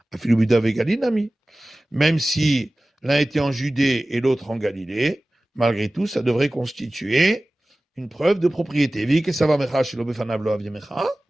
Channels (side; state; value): both; normal; correlation 0.97